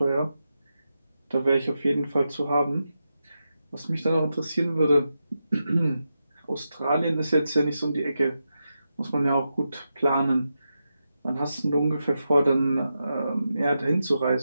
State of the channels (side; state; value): both; inverted; correlation -0.88